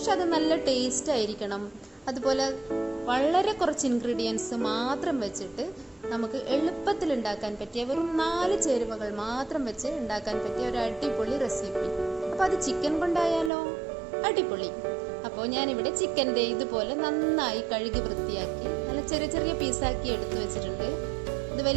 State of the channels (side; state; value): left; drops out; at 13.5 s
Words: അത് നല്ല ടേസ്റ്റ് ആയിരിക്കണം. അതുപോലെ വളരെ കുറച്ച് ഇൻഗ്രീഡിയൻസ് മാത്രം വെച്ചിട്ട് നമുക്ക് എളുപ്പത്തിൽ ഉണ്ടാക്കാൻ പറ്റിയ വെറും 4 ചേരുവകൾ മാത്രം വെച്ച് ഉണ്ടാക്കാൻ പറ്റിയ ഒരു അടിപൊളി റെസിപ്പി. അപ്പോൾ അത് ചിക്കൻ കൊണ്ടായാലോ? അടിപൊളി. അപ്പോൾ ഞാനിവിടെ ചിക്കൻ്റെ ഇതുപോലെ നന്നായി കഴുകി വൃത്തിയാക്കി നല്ല ചെറിയ ചെറിയ പീസാക്കി എടുത്തു വെച്ചിട്ടുണ്ട്. ഇത്